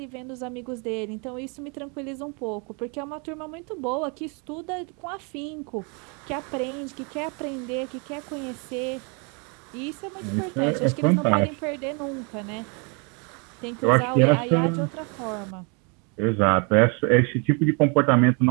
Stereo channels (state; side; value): quieter; left; 34.4 dB